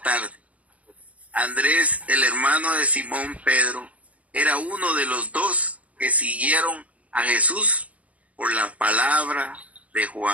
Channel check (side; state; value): left; late; 0.067 ms